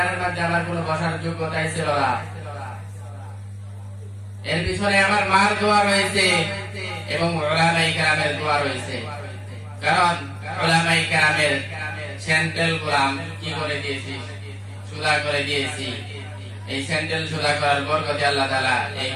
মধ্যে আমার কোনো বসার যোগ্যতাই ছিল না। এর পিছনে আমার মার দোয়া রয়েছে এবং উলামায়ে কেরামের দোয়া রয়েছে। কারণ উলামায়ে কেরামের স্যান্ডেল গোলাম কি করে দিয়েছি, সুদা করে দিয়েছি। এই স্যান্ডেল সুদা করার বরকতে আল্লাহ তাআলা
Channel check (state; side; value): identical; both; correlation 1.00